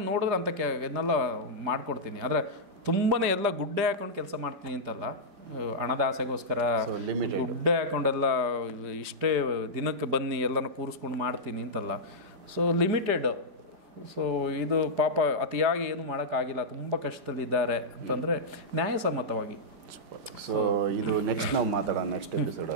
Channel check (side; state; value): left; late; 5.0 ms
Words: ನೋಡಿದ್ರೆ ಅಂಥ ಇದನ್ನೆಲ್ಲ ಮಾಡಿಕೊಡ್ತೀನಿ. ಆದರೆ ತುಂಬಾ ಎಲ್ಲ ಗುಡ್ಡೆ ಹಾಕೊಂಡು ಕೆಲಸ ಮಾಡ್ತೀನಿ ಅಂತಲ್ಲ, ಹಣದ ಆಸೆಗೋಸ್ಕರ ಗುಡ್ಡೆ ಹಾಕೊಂಡೆಲ್ಲ ಇಷ್ಟೇ ದಿನಕ್ಕೆ ಬನ್ನಿ ಎಲ್ಲನೂ ಕೂರಿಸ್ಕೊಂಡು ಮಾಡ್ತೀನಿ ಅಂತಲ್ಲ. So limited. ಸೊ ಇದು ಪಾಪ ಅತಿಯಾಗಿ ಏನು ಮಾಡೋಕ್ಕಾಗಿಲ್ಲ, ತುಂಬ ಕಷ್ಟದಲ್ಲಿದ್ದಾರೆ ಅಂತಂದರೆ ನ್ಯಾಯಸಮ್ಮತವಾಗಿ. ಸೊ ಇದು ನೆಕ್ಸ್ಟ್ ನಾವು ಮಾತಾಡೋಣ ನೆಕ್ಸ್ಟ್